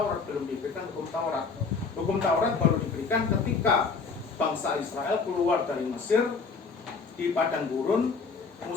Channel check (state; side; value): quieter; right; 4.9 dB